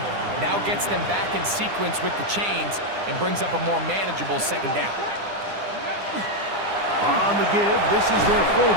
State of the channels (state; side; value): late; left; 9.9 ms